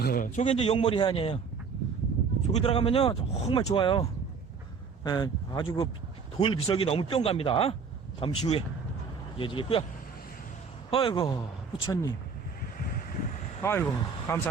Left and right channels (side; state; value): left; quieter; 5.6 dB